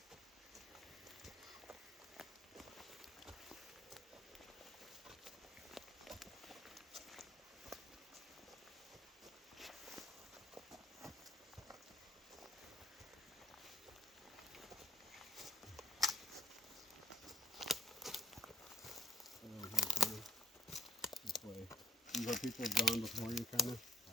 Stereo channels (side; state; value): both; normal; correlation 0.66